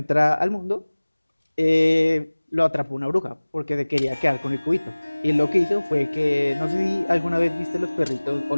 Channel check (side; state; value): both; inverted; correlation -1.00